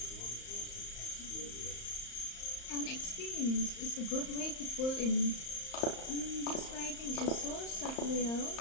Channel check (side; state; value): right; late; 35 ms